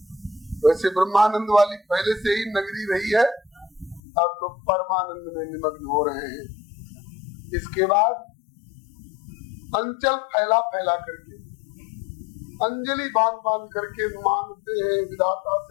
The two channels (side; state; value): right; drops out; at 4.0 s